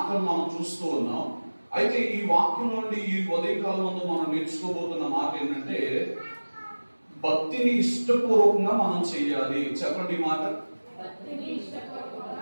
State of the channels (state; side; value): inverted; both; correlation -1.00